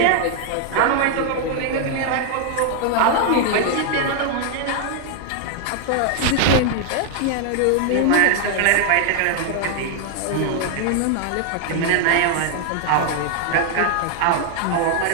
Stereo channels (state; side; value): different; both; correlation 0.00